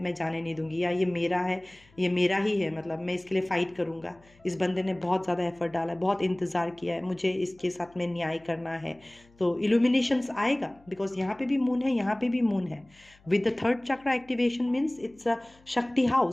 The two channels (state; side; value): noise; left; hum, 29 dB below the sound